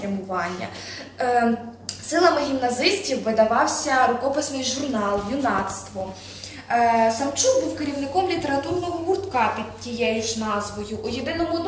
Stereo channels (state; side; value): identical; both; correlation 1.00